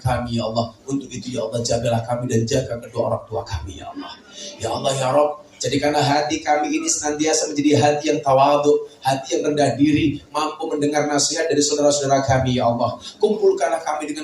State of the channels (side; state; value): both; identical; correlation 1.00